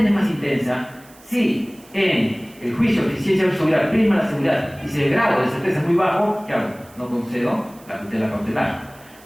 es más intensa, si en el juicio de eficiencia versus seguridad prima la seguridad y si el grado de certeza es muy bajo, ¿qué hago? No concedo la tutela cautelar.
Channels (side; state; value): right; noise; hiss, 25 dB below the sound